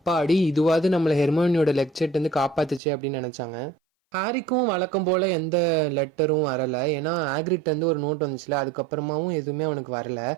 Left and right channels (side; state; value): left; drops out; at 2.8 s